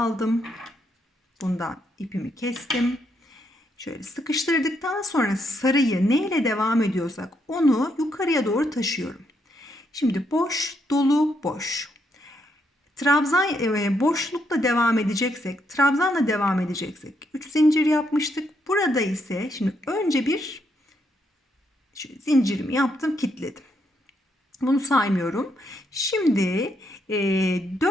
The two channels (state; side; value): normal; both; correlation 0.76